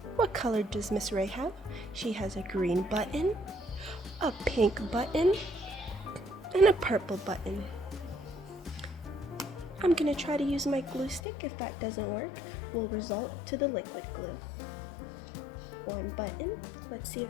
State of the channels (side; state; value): right; drops out; at 11.2 s